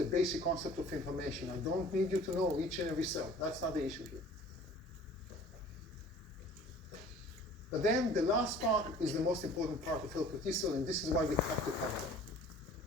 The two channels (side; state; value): both; normal; correlation 0.48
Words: basic concept of inflammation. I don't need you to know each and every cell. That's not the issue here. But then the last part is the most important part of helper T cell, and this is why we have to cover